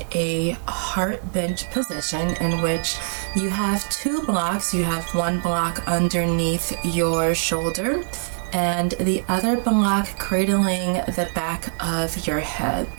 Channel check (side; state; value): left; silent; digital silence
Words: a heart bench position in which you have two blocks. You have one block underneath your shoulder and the other block cradling the back of your head.